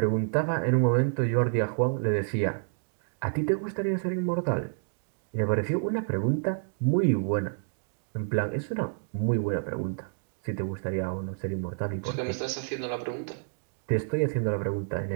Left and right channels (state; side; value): silent; left; digital silence